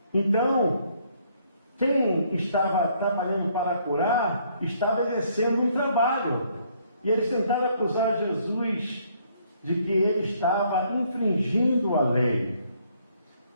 Então, quem estava trabalhando para curar, estava exercendo um trabalho. E eles tentaram acusar Jesus de que ele estava infringindo a lei.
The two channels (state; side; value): inverted; both; correlation -0.67